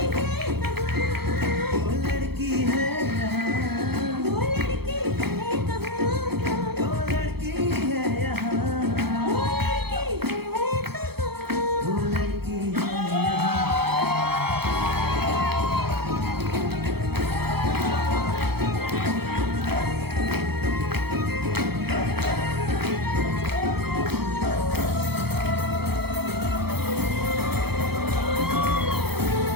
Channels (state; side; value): late; left; 0.96 ms